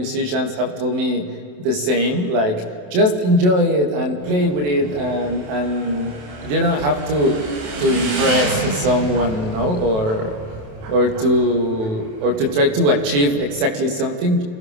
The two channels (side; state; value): left; late; 27 ms